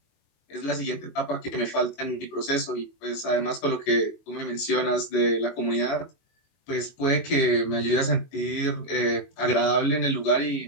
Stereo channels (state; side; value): late; right; 22 ms